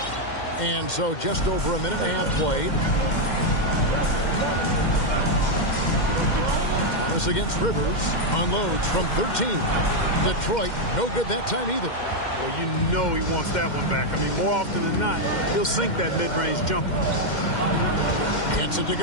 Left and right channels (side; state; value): right; late; 2.1 ms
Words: And so just over a minute and a half played. Harris against Rivers. Unloads from 13. Detroit, no good that time either. Well, you know he wants that one back. I mean, more often than not, he'll sink that mid-range jumper. Gets it to